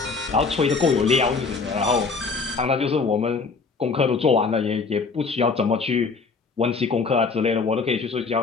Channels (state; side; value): quieter; right; 4.6 dB